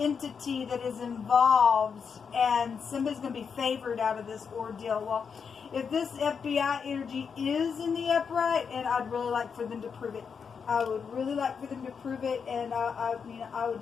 that is involved, and somebody's going to be favored out of this ordeal. Well, if this FBI energy is in the upright, and I'd really like for them to prove it. I would really like for them to prove it, and I would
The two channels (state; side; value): quieter; right; 6.2 dB